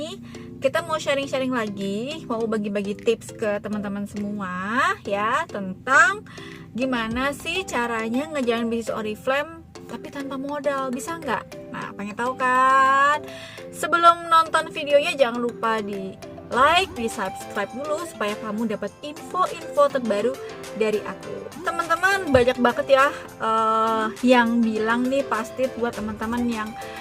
kita mau sharing-sharing lagi, mau bagi-bagi tips ke teman-teman semua ya, tentang gimana sih caranya ngejalanin bisnis Oriflame tapi tanpa modal, bisa nggak? Nah, pengen tahu kan? Sebelum nonton videonya jangan lupa di like, di subscribe dulu supaya kamu dapat info-info terbaru dari aku. Teman-teman, banyak banget ya yang bilang nih, pasti buat teman-teman yang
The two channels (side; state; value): both; identical; correlation 1.00